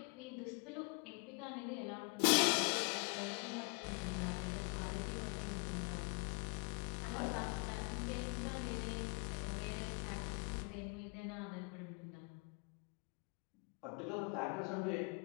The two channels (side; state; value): right; quieter; 33.8 dB